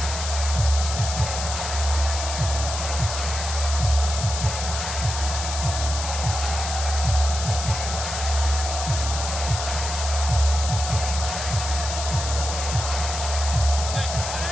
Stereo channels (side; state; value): left; noise; hiss, 5 dB below the sound